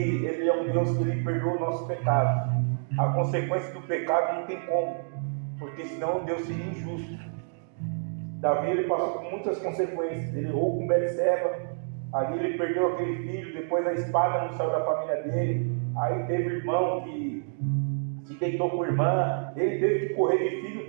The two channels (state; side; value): silent; left; digital silence